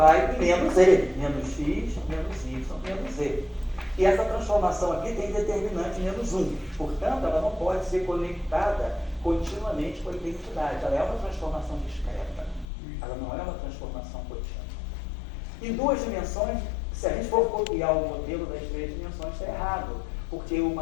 em menos z, menos x, menos y, menos z. E essa transformação aqui tem determinante menos 1. Portanto, ela não pode ser conectada continuamente com a identidade. Ela é uma transformação discreta. Ela não é uma transformação contínua. Em duas dimensões, se a gente for copiar o modelo das três dimensões, está errado. Porque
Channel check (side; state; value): right; drops out; at 12.7 s